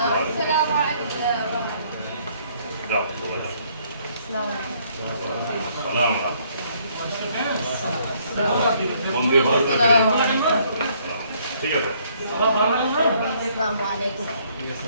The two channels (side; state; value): both; inverted; correlation -0.65